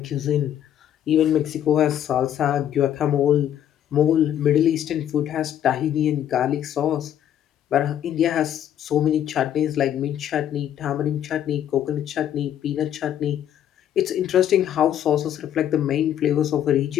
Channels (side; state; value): right; quieter; 10.6 dB